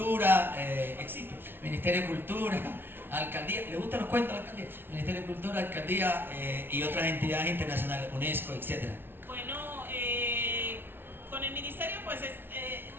existe. Ministerio de Cultura, Alcaldía, ¿le gustan los cuentos a la Alcaldía? Ministerio de Cultura, Alcaldía y otras entidades internacionales, UNESCO, etcétera. Bueno, con el ministerio pues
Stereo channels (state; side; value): late; left; 0.11 ms